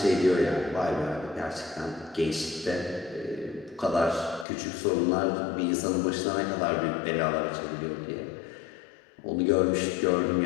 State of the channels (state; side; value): drops out; right; at 4.5 s